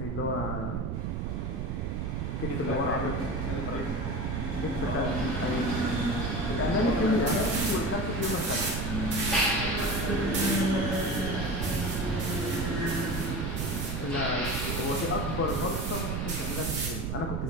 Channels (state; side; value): noise; right; rumble, 2 dB below the sound